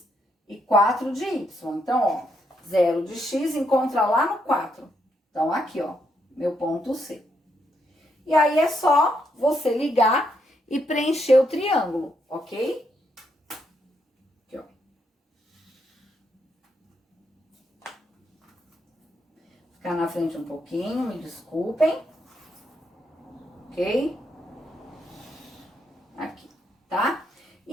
e 4 de Y. Então, ó, 0 de X encontra lá no 4. Então, aqui, ó, meu ponto C. E aí, é só você ligar e preencher o triângulo, ok? Aqui, ó. Ficar na frente um pouquinho, me desculpem. Ok? Aqui, tá?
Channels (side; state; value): both; normal; correlation 0.77